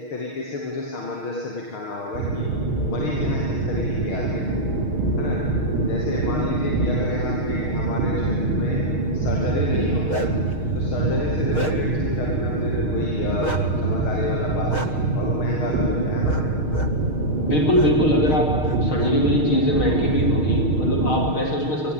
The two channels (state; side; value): late; right; 6.5 ms